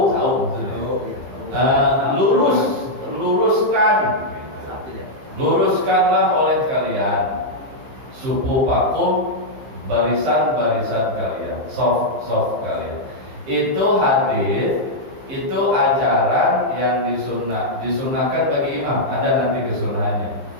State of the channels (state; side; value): late; left; 15 ms